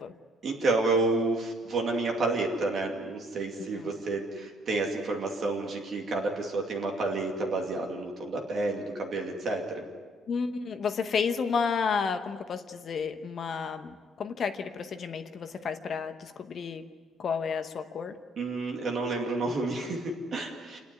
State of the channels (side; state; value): both; normal; correlation 0.64